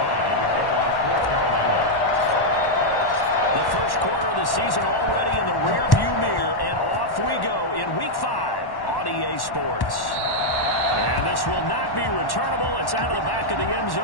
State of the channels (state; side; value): late; right; 1.1 ms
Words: to kick off for Carolina. The first quarter of the season already in the rearview mirror, and off we go in Week 5 on EA Sports. And this will not be returnable. It's out of the back of the end